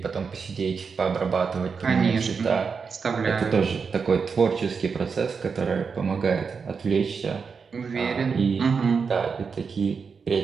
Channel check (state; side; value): quieter; left; 5.5 dB